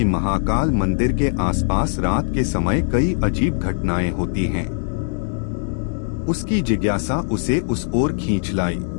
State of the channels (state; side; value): silent; right; digital silence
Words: महाकाल मंदिर के आसपास रात के समय कई अजीब घटनाएं होती हैं। उसकी जिज्ञासा उसे उस ओर खींच लाई।